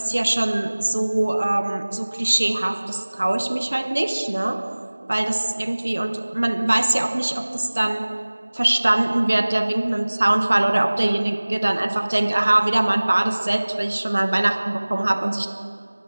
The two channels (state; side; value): inverted; both; correlation -1.00